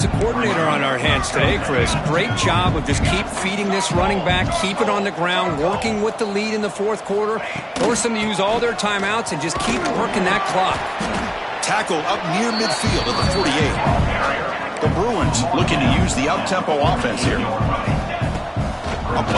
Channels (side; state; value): both; identical; correlation 1.00